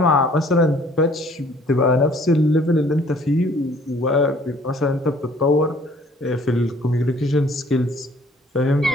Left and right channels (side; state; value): both; normal; correlation 0.57